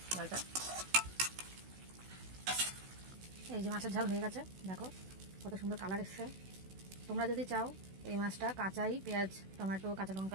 ঝালটা। এই যে মাছের ঝাল হয়ে গেছে, দেখো কত সুন্দর কালার এসছে। তোমরা যদি চাও এই মাছটা কাঁচাই পেঁয়াজ টমেটো কাঁচা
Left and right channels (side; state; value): left; late; 16 ms